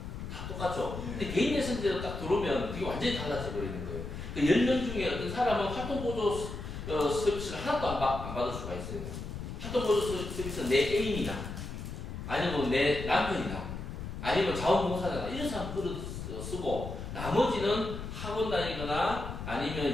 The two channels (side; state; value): left; noise; rumble, 7 dB below the sound